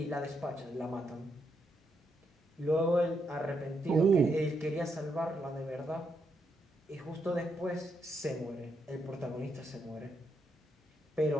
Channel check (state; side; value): normal; both; correlation 0.79